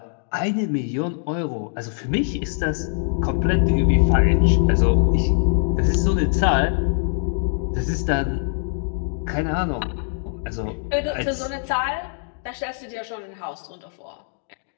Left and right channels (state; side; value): silent; right; 64 dB below the other